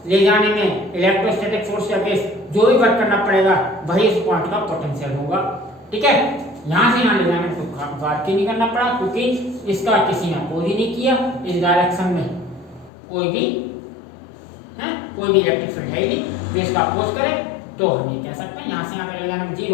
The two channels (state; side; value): drops out; right; at 12.9 s